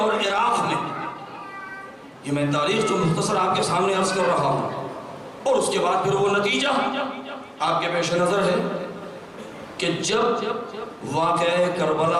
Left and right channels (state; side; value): identical; both; correlation 1.00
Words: عراق میں. یہ میں تاریخ جو مختصر آپ کے سامنے عرض کر رہا ہوں، اور اس کے بعد پھر وہ نتیجہ آپ کے پیش نظر ہے کہ جب واقعہ